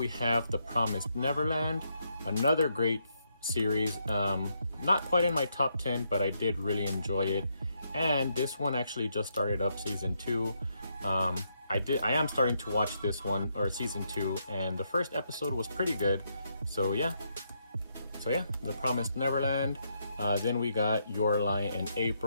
have The Promised Neverland, another great series, not quite in my top 10, but I did really enjoy it. And this one actually just started up Season 2. I am starting to watch this one, or Season 2, and the first episode was pretty good. So yeah, The Promised Neverland. Then we got Your Lie in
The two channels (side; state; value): both; inverted; correlation -0.78